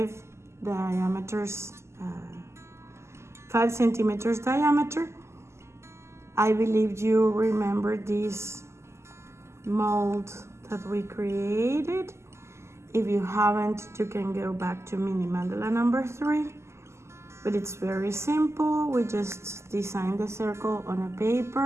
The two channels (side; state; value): left; late; 0.13 ms